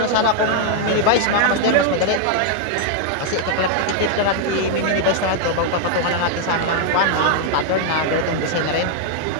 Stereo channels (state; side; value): different; both; correlation 0.00